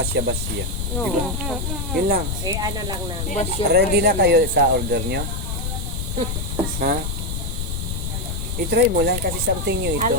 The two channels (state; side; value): noise; left; rumble, 3 dB below the sound